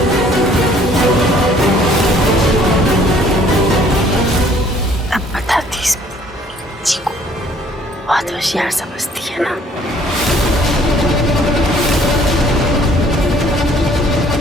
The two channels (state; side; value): normal; both; correlation 0.59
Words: अब बताती इस जी को, बहुत होशियार समझती है ना।